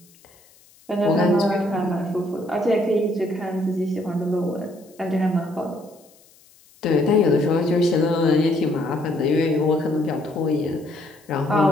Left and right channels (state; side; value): noise; left; hiss, 29 dB below the sound